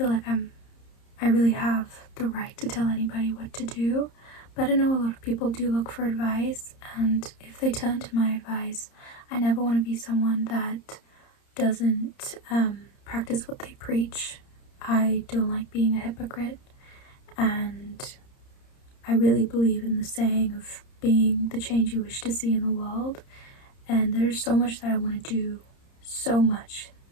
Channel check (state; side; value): late; right; 30 ms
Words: like I really have the right to tell anybody what to do, but I know a lot of people do look for advice, and if they turn to my advice, I never want to be someone that doesn't practice what they preach. I don't like being a hypocrite, and I really believe in the saying of being the change you wish to see in the world. And there's so much that I want to do, so much